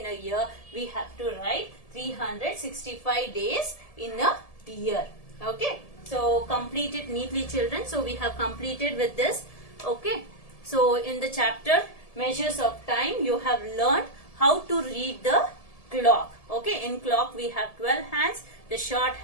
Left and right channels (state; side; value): late; right; 1.7 ms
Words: a year, we have to write 365 days in a year. Okay, so complete it neatly, children. So we have completed with this. Okay, so in the chapter measures of time, you have learned how to read the clock. Okay, in clock we have 12 hands, the short